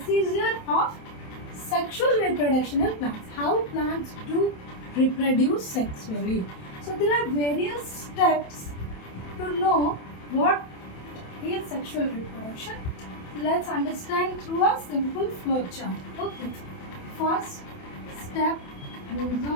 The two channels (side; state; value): right; late; 27 ms